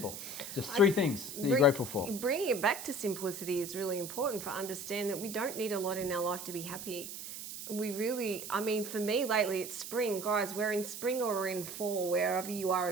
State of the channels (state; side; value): noise; right; hiss, 9 dB below the sound